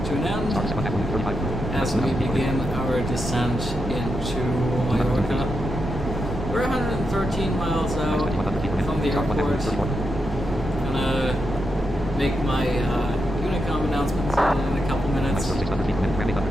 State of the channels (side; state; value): both; normal; correlation 0.85